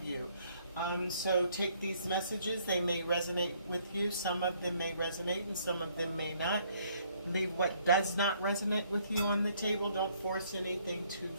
you. So take these messages. They may resonate with you. Some of them may resonate and some of them may not. Leave what does not resonate with you on the table. Don't force anything to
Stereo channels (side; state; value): both; inverted; correlation -0.65